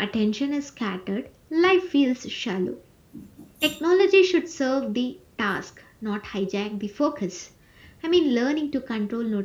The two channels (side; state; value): both; identical; correlation 1.00